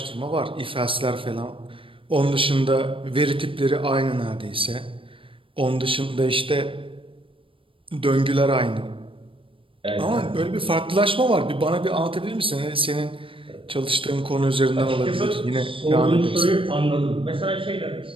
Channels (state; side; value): late; left; 0.25 ms